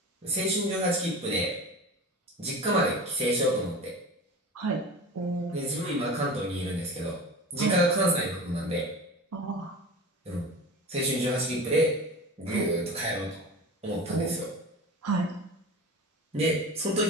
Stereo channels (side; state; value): both; normal; correlation 0.33